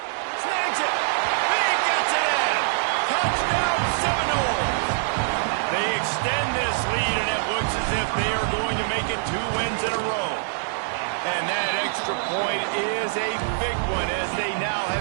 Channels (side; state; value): left; silent; digital silence